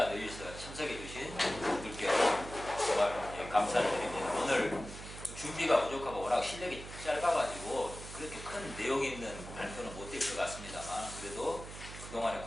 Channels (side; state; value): right; noise; hum, 12 dB below the sound